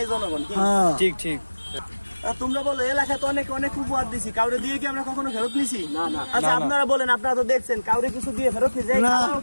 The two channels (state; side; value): inverted; both; correlation -1.00